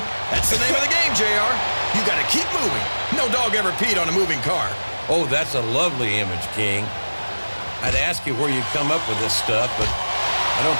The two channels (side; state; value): both; inverted; correlation -1.00